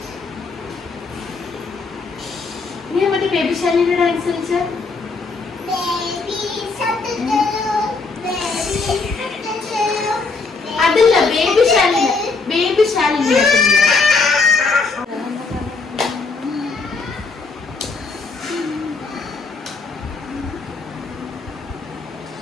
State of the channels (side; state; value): right; quieter; 4.1 dB